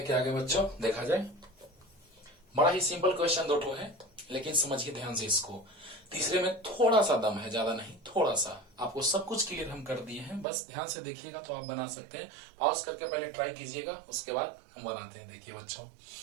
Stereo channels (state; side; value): drops out; left; at 10.5 s